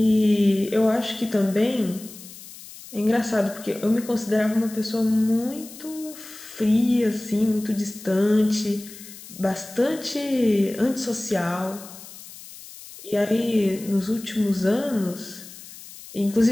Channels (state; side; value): noise; left; hiss, 16 dB below the sound